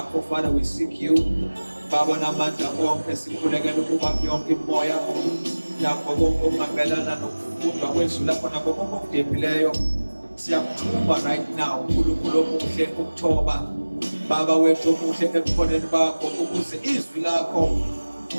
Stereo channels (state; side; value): inverted; both; correlation -1.00